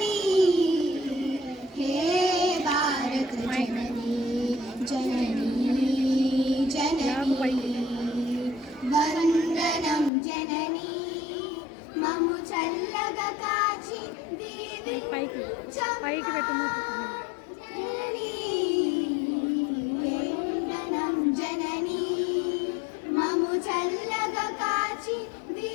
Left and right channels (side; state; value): right; drops out; at 10.1 s